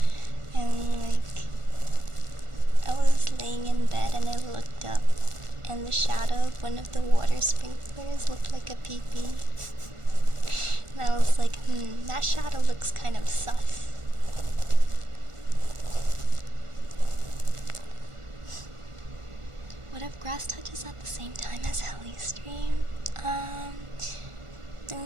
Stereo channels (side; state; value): left; late; 1.4 ms